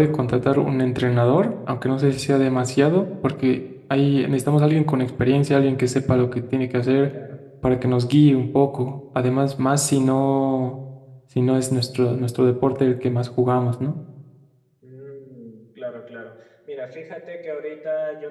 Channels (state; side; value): identical; both; correlation 1.00